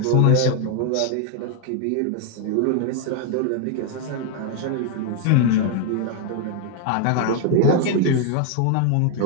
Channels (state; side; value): different; both; correlation 0.00